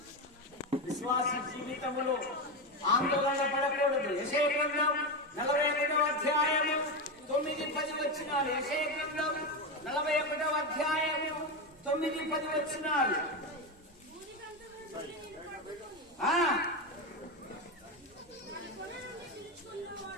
విశ్వాస జీవితంలో ఆందోళన పడకూడదు. యెషయా గ్రంథం 41వ అధ్యాయము 9-10 వచనాలు. యెషయా గ్రంథం 41వ అధ్యాయము 9-10 వచనాలు.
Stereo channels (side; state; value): both; normal; correlation 0.14